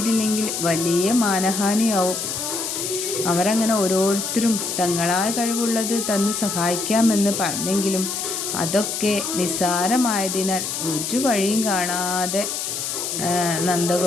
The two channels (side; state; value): left; noise; hiss, 3 dB below the sound